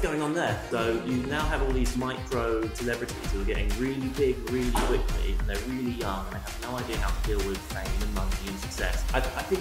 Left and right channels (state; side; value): identical; both; correlation 1.00